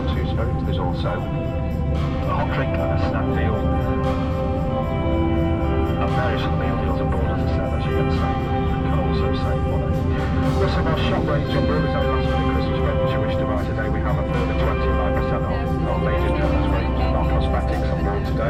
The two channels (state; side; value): identical; both; correlation 1.00